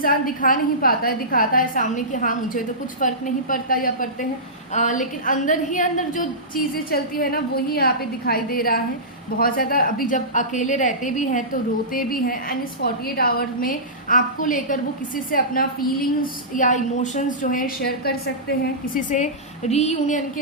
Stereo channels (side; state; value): both; normal; correlation -0.19